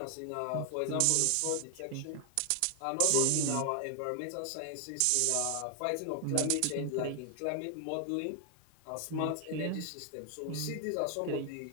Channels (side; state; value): both; different; correlation 0.00